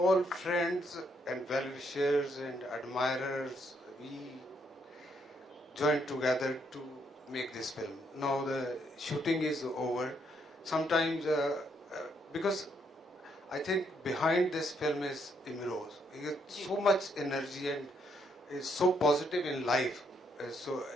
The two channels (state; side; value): normal; both; correlation 0.73